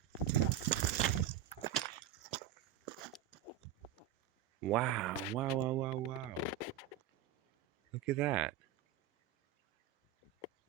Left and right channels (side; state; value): left; quieter; 10.5 dB